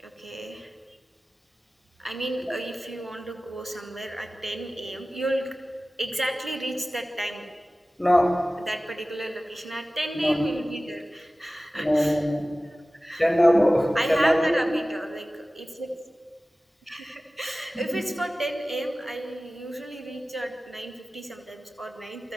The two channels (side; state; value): both; normal; correlation 0.97